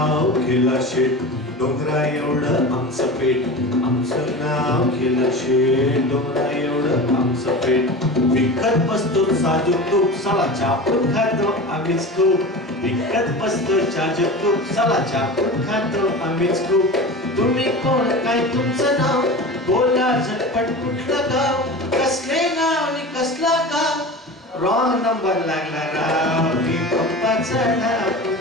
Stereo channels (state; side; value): normal; both; correlation 0.32